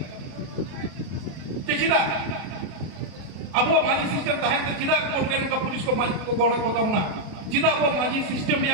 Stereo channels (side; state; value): left; late; 33 ms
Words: চিদা আবো মাঝি সিস্টেম তাহেন চিদা কোর্টে কা पुलिस को माझी को कोहड़ा কথা না চিদা আবো মাঝি সিস্টেম